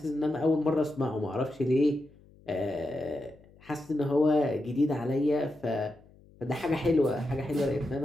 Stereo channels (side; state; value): left; noise; hum, 26 dB below the sound